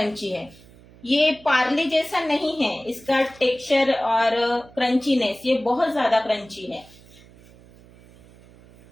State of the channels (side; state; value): right; noise; hum, 24 dB below the sound